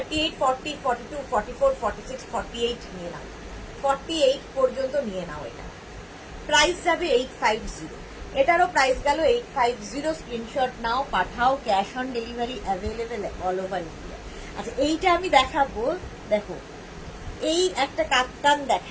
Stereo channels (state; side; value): identical; both; correlation 1.00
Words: 40, 42, 44, 46, 48 নিয়ে নাও, 48 পর্যন্ত নিয়ে নাও। এটা প্রাইস যাবে 850, এটারও প্রাইস গেল 850। স্ক্রিনশট নাও, পাঠাও। Cash on delivery available all over India. আচ্ছা এইটা আমি দেখাবো, দেখো এই একটা কাপ্তান